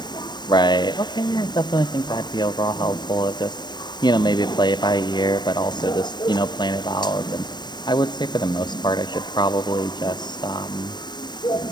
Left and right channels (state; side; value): late; right; 0.21 ms